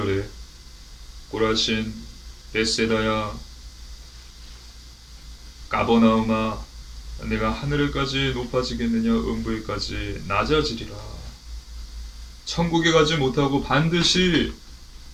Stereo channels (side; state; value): both; identical; correlation 1.00